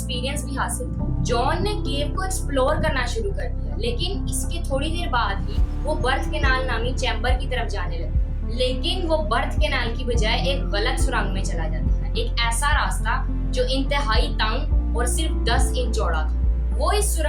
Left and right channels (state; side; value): identical; both; correlation 1.00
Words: भी हासिल था। जॉन ने केव को एक्सप्लोर करना शुरू कर दिया, लेकिन इसके थोड़ी देर बाद ही वो बर्थ कैनाल नामी चैम्बर की तरफ जाने लगा। लेकिन वो बर्थ कैनाल की बजाय एक गलत सुरंग में चला जाता है, एक ऐसा रास्ता जो इंतहाई तंग और सिर्फ 10 इंच चौड़ा था। वो इस